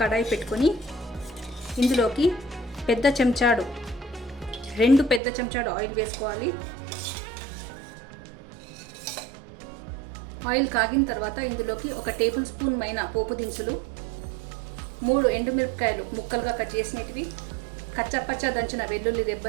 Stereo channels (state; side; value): drops out; left; at 5.2 s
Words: కడాయి పెట్టుకొని ఇందులోకి 2 పెద్ద చెంచాడు ఆయిల్ వేసుకోవాలి. ఆయిల్ కాగిన తర్వాత ఇందులోకి 1 టేబుల్ స్పూన్ మైన పోపు దినుసులు, 3 ఎండుమిరపకాయలు ముక్కలుగా కట్ చేసినటివి, కచ్చపచ్చ దంచిన వెల్లుల్లి